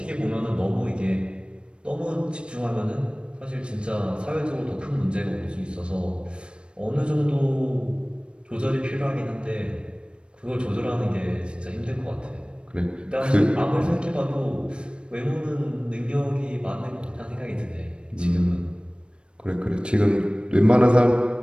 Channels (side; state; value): left; late; 0.056 ms